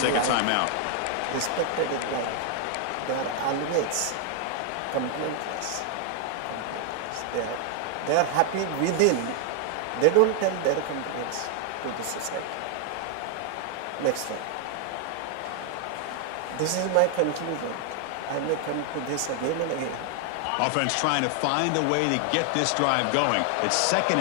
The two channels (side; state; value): both; different; correlation 0.00